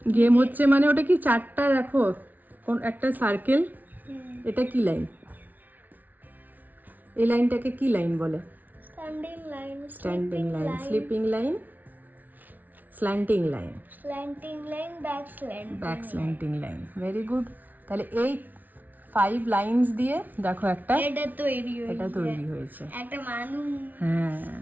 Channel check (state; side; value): late; left; 0.080 ms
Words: গেম হচ্ছে মানে ওটা কি 4টা দেখো, কোন একটা সার্কেল, এটা কি লাইন? এই লাইনটাকে কি লাইন বলে? Standing line, standing line, sleeping line, slanting line, slanting line, back slanting line. Very good. তাহলে এই 5 লাইনস দিয়ে দেখো একটা এটা তৈরি হয়েছে একটা মানুষ। হ্যাঁ,